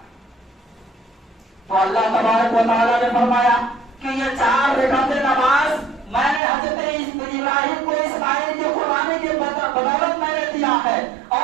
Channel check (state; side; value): drops out; left; at 6.4 s